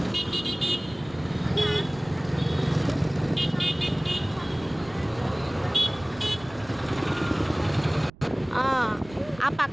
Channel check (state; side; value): noise; right; rumble, 21 dB below the sound